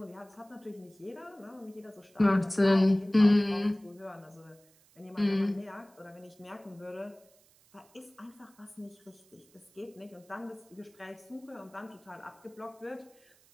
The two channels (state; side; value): noise; right; hiss, 30 dB below the sound